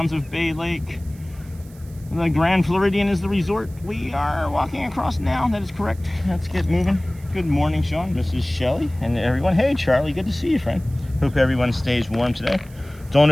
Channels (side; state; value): right; noise; hiss, 26 dB below the sound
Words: of Bay Lake. The Grand Floridian is the resort we are walking across now. That is correct. Let's get moving. Good morning, Sean. This is Shelly and everyone. Hey, Charlie. Good to see you, friend. Hope everyone stays warm today. Don't